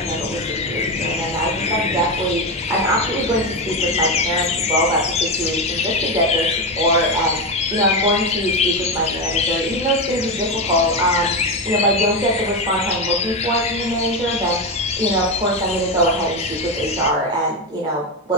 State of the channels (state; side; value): normal; both; correlation 0.13